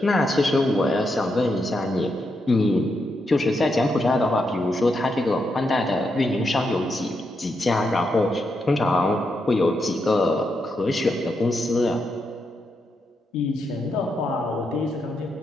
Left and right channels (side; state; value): both; normal; correlation 0.83